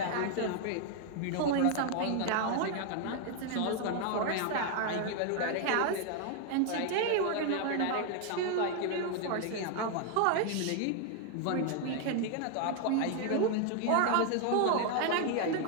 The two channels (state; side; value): different; both; correlation 0.00